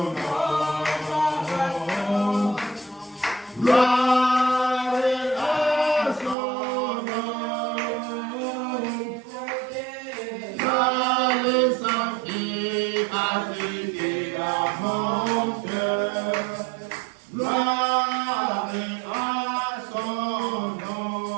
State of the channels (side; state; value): left; drops out; at 6.4 s